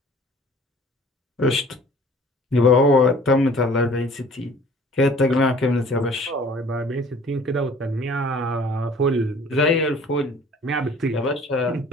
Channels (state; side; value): normal; both; correlation 0.51